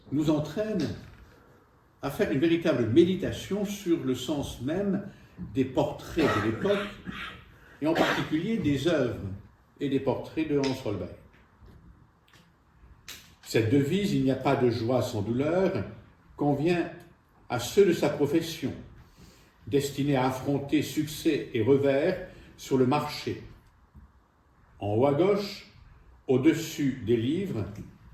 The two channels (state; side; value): identical; both; correlation 1.00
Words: nous entraîne à faire une véritable méditation sur le sens même des portraits de l'époque, et en particulier des œuvres et des portraits de Hans Holbein. Cette devise, il n'y a pas de joie sans douleur, convient à ceux de sa profession, destinés à affronter succès et revers sur le marché. En haut à gauche, au-dessus des livres,